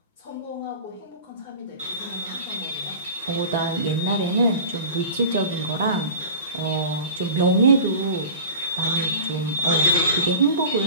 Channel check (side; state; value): both; inverted; correlation -0.38